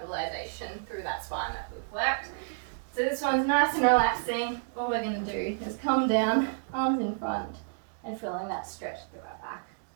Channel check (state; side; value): silent; left; digital silence